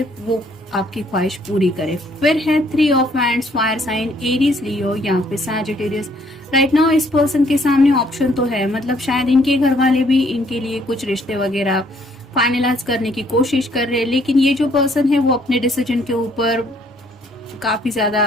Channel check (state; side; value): normal; both; correlation 0.65